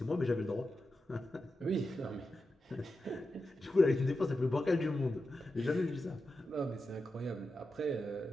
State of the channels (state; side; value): normal; both; correlation 0.90